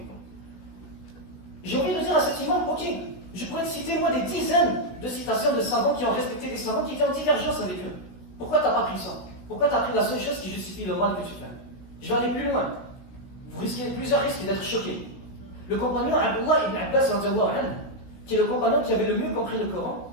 J'ai envie de dire à cet imam, ok, je pourrais te citer moi des dizaines de citations de savants qui ont respecté des savants qui étaient en divergence avec eux. Pourquoi tu n'as pas pris ça? Pourquoi tu as pris la seule chose qui justifie le mal que tu fais? Je vais aller plus loin. Vous risquez plusieurs risques d'être choqués. Le compagnon Abdullah ibn Abbas, qui est le compagnon qui avait le mieux compris le Coran,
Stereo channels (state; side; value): late; right; 16 ms